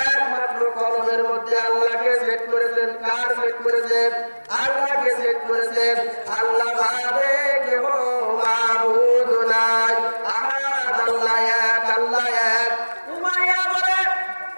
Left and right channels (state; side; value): inverted; both; correlation -1.00